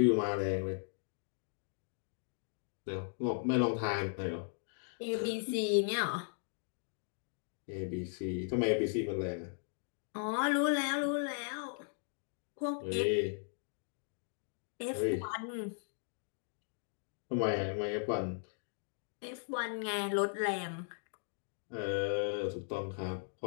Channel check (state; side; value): silent; right; digital silence